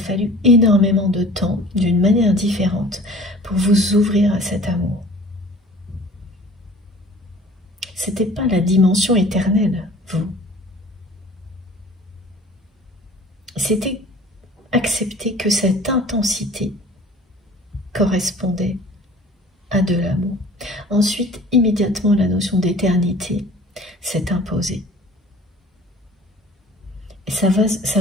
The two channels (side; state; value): both; normal; correlation 0.46